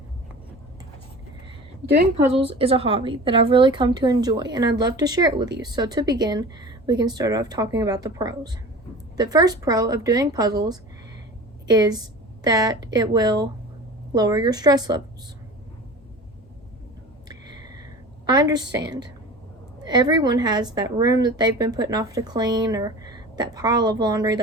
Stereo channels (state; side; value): normal; both; correlation 0.37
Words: Doing puzzles is a hobby that I've really come to enjoy, and I'd love to share it with you. So to begin, we can start off talking about the pros. The first pro of doing puzzles is that it will lower your stress levels. I understand. Everyone has that room that they've been putting off to clean, or that pile of laundry